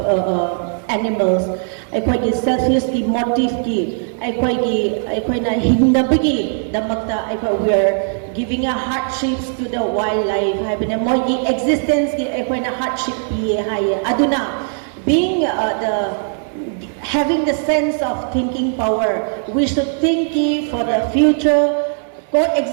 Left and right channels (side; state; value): left; silent; digital silence